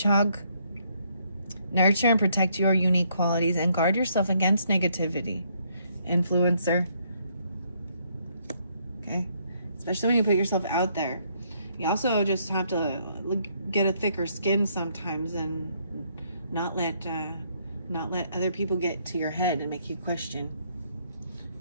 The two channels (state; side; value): inverted; both; correlation -0.70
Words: Nurture and protect your unique qualities and guard yourself against negativity. Influencer. Okay? Especially when you put yourself out there. You also just have to get a thicker skin sometimes and not let other people get to your head and make you question,